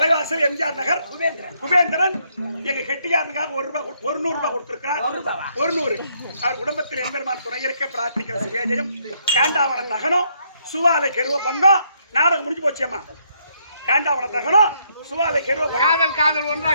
எம்ஜிஆர் நகர் குபேந்திரன் எங்க கெட்டியாரனுக்காக ₹100 கொடுத்திருக்கார். 100 அவர் குடும்பத்தில் எம்பெருமான் துணை இருக்க பிரார்த்திக்கிற சுவேஜயம். காண்டாவன தகனம் சுவாலை கெருவ பங்கம். நாடகம் முடிஞ்சு போச்சியம்மா. காண்டாவன தகனம் சுவாலை கெருவ காதல் ஒன்றா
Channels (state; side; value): inverted; both; correlation -0.73